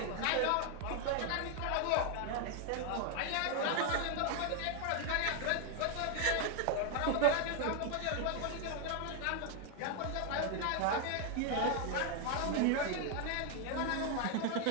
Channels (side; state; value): both; different; correlation 0.00